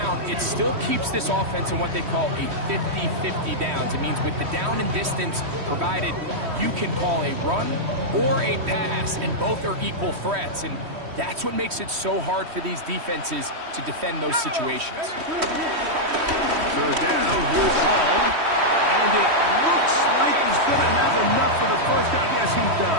it still keeps this offense in what they call a 50-50 downs. It means with the down and distance provided, you can call a run or a pass, and both are equal threats. And that's what makes it so hard for these defenses to defend those situations. Third down, here's Hall. And it looks like he's going to have enough for the first down. Yes, he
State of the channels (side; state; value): left; late; 3.1 ms